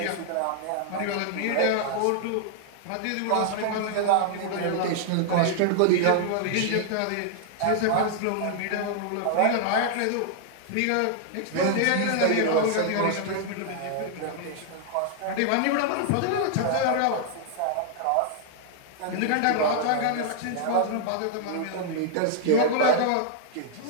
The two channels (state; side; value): different; both; correlation -0.01